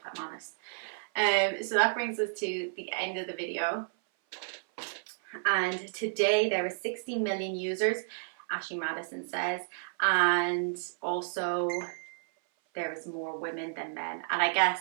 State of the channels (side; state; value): left; silent; 57 dB below the other